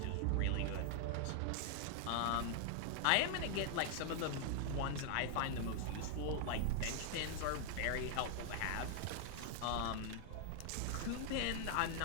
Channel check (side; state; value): both; different; correlation 0.00